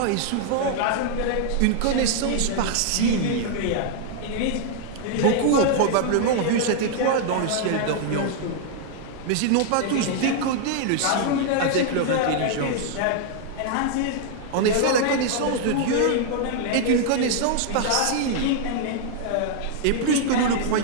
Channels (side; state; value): both; different; correlation -0.01